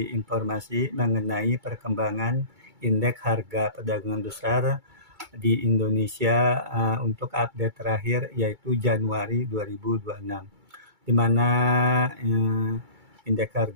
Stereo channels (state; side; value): late; left; 2.3 ms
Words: informasi mengenai perkembangan indeks harga perdagangan besar di Indonesia untuk update terakhir yaitu Januari 2026. Di mana indeks